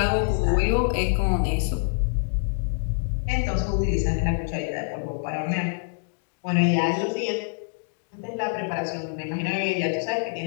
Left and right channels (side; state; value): right; silent; digital silence